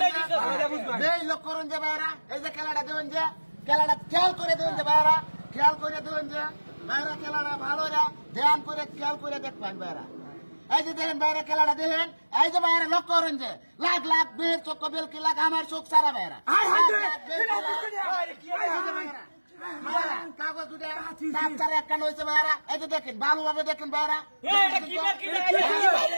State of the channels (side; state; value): both; inverted; correlation -1.00